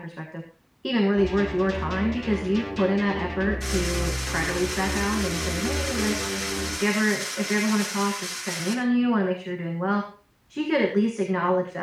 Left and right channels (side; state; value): both; identical; correlation 1.00